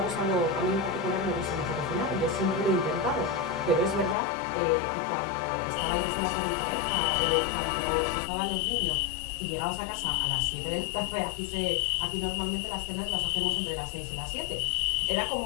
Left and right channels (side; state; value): right; drops out; at 4.2 s